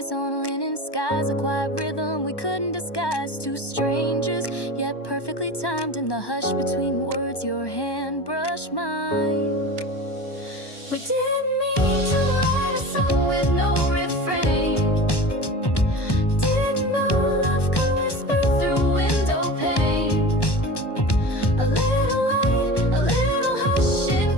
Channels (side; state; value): right; late; 1.1 ms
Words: on linen skies, a quiet rhythm we couldn't disguise. Two strangers, yet perfectly timed. In the hush between words, your hand brushed mine. We didn't mean to write a song with no refrain. Didn't know love could whisper through window pane. A little light, a little hush in